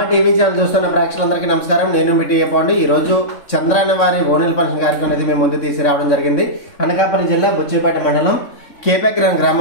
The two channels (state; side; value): late; right; 3.6 ms